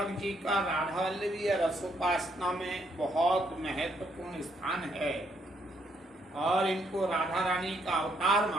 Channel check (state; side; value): normal; both; correlation 0.73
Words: जी का राधा वल्लभी रसोपासना में बहुत महत्वपूर्ण स्थान है और इनको राधा रानी का अवतार